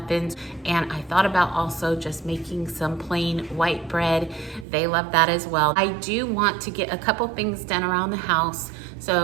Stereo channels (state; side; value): drops out; left; at 4.7 s